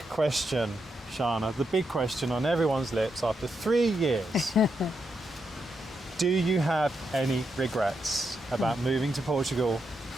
question, Shanna, the big question on everyone's lips after 3 years. Do you have any regrets about moving to Portugal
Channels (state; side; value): normal; both; correlation 0.83